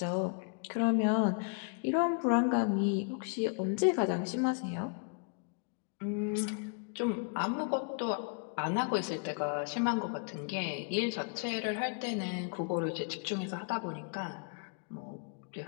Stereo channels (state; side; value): quieter; right; 39.5 dB